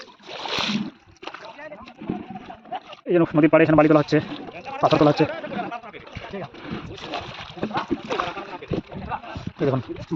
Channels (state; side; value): identical; both; correlation 1.00